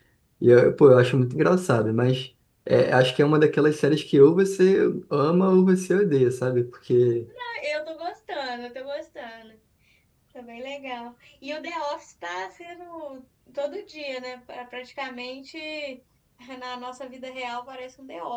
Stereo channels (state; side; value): identical; both; correlation 1.00